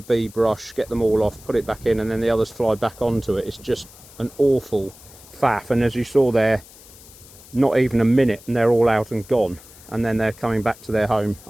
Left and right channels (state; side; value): noise; left; hiss, 21 dB below the sound